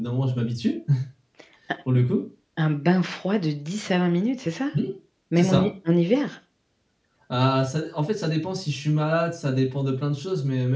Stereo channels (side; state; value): both; identical; correlation 1.00